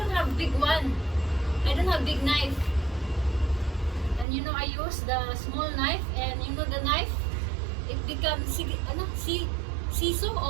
have big one. I don't have big knife. And you know, I use the small knife, and you know the knife, it becomes siso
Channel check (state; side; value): drops out; left; at 4.2 s